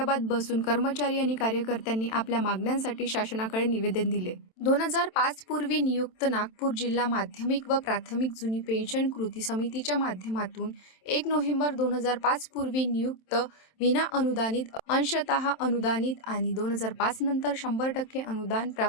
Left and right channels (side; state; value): right; late; 27 ms